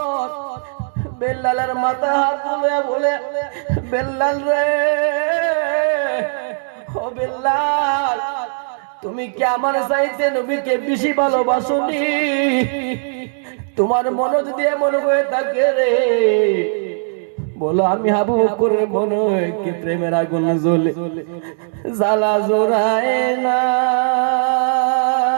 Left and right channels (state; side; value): silent; left; digital silence